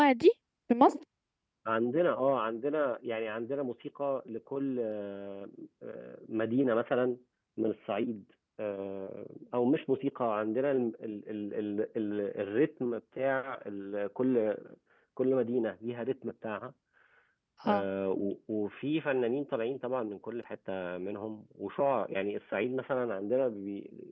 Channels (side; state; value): both; identical; correlation 1.00